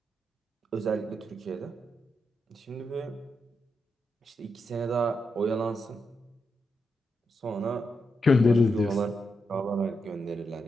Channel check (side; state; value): both; normal; correlation 0.84